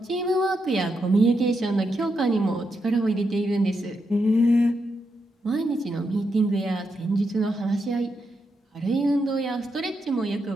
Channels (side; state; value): both; normal; correlation 0.83